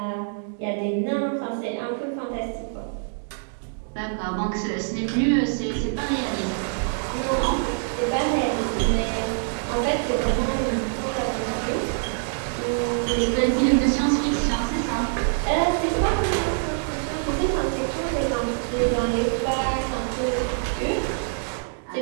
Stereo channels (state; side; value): silent; left; digital silence